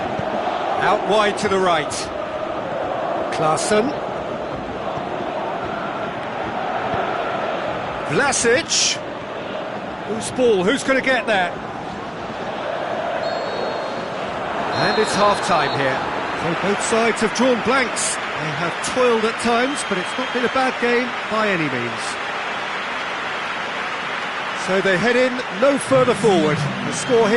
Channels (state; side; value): identical; both; correlation 1.00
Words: Out wide to the right. Klaassen. Vlasic. Whose ball? Who's going to get that? And it's half-time here. So both sides have drawn blanks. They have toiled at times, but it's not been a bad game by any means. So they head in no further forward. The score